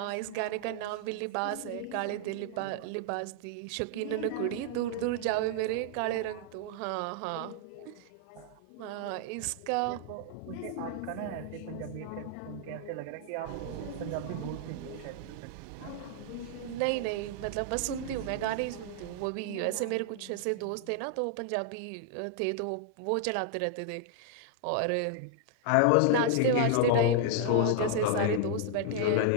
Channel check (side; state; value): both; different; correlation 0.00